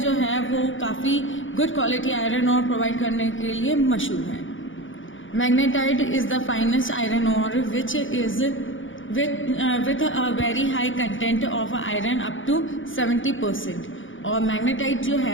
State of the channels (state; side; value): late; right; 0.57 ms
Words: है वो काफ़ी good quality iron ore provide करने के लिए मशहूर है। Magnetite is the finest iron ore which is with a very high content of iron up to 70%। और मैग्नेटाइट जो